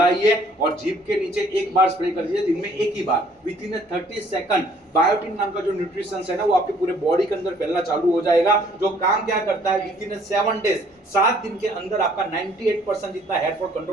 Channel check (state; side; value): normal; both; correlation 0.60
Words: और जीभ के नीचे 1 बार स्प्रे कर दीजिए, दिन में 1 ही बार। विद इन 30 सेकंड बायोटिन नाम का जो न्यूट्रिशन है ना, वो आपके पूरे बॉडी के अंदर फैलना चालू हो जाएगा। जो काम क्या करता है, विद इन 7 डेज, 7 दिन के अंदर आपका 98% जितना हेयर फॉल